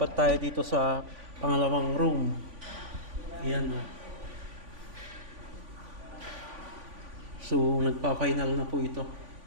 tayo dito sa pangalawang room. Ayan o. So nagpa-final na po ito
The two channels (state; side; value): late; left; 3.5 ms